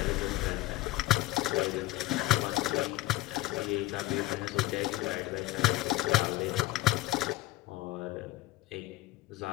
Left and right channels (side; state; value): right; quieter; 18.0 dB